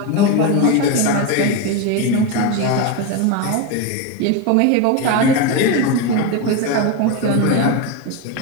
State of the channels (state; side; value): different; both; correlation 0.04